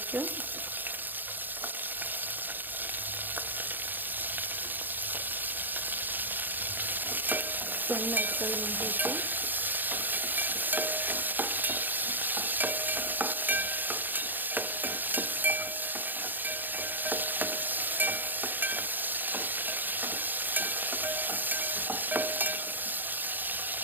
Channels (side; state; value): left; late; 0.089 ms